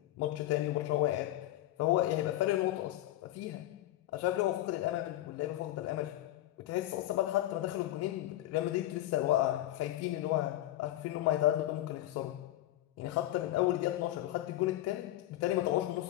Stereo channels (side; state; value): right; quieter; 14.8 dB